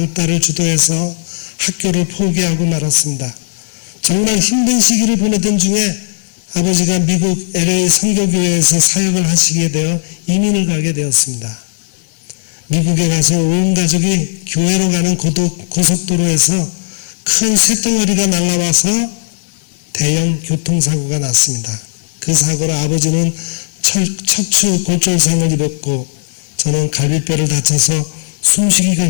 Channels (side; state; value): right; silent; digital silence